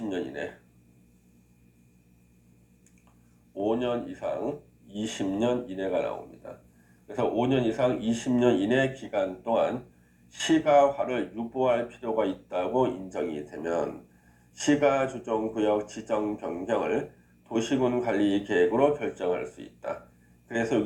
이내 5년 이상 20년 이내가 나옵니다. 그래서 5년 이상 20년 이내 기간 동안 시가화를 유보할 필요가 있다고 인정이 되면 시가조정구역 지정 변경을 도시군 관리 계획으로 결정할 수 있다. 그래서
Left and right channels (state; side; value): identical; both; correlation 1.00